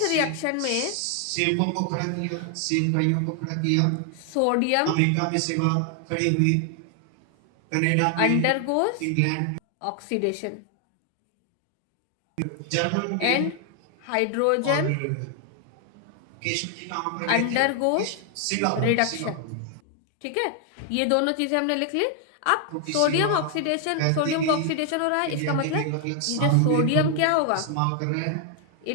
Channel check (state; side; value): different; both; correlation 0.00